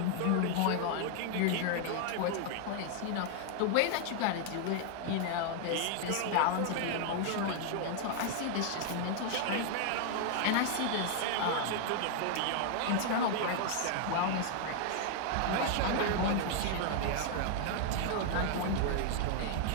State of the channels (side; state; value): both; different; correlation 0.00